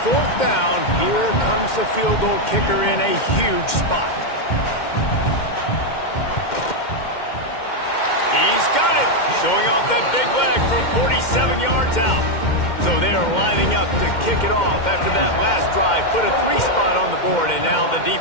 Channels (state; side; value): late; right; 2.1 ms